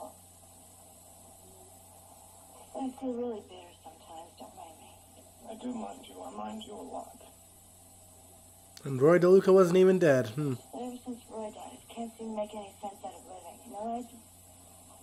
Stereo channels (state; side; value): identical; both; correlation 1.00